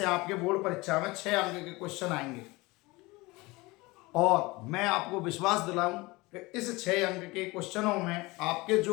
आपके बोर्ड परीक्षा में 6 अंक के क्वेश्चन आएंगे। और मैं आपको विश्वास दिलाऊं कि इस 6 अंक के क्वेश्चनों में आपके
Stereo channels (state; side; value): quieter; right; 22.7 dB